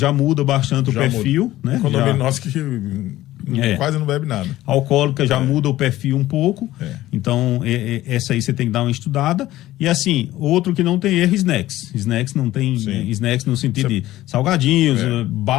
muda bastante o perfil, né? O condomínio nosso que quase não bebe nada. Alcoólica já muda o perfil um pouco. Então, essa aí você tem que dar uma estudada. E assim, outro que não tem erro, snacks. Snacks não tem snacks no sentido de salgadinhos,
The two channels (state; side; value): quieter; right; 15.4 dB